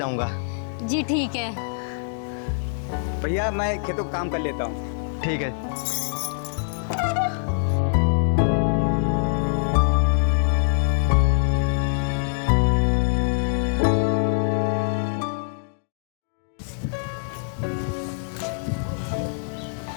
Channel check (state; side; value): silent; right; digital silence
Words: जी ठीक है। भैया मैं खेतों का काम कर लेता हूँ। ठीक है।